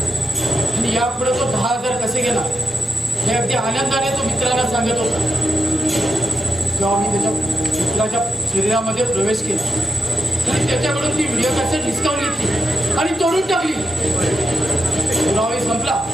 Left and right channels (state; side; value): normal; both; correlation 0.89